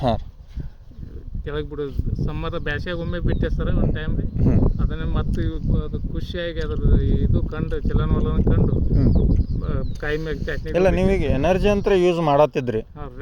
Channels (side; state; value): both; identical; correlation 1.00